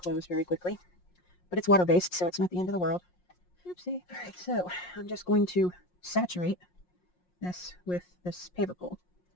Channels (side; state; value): right; late; 5.6 ms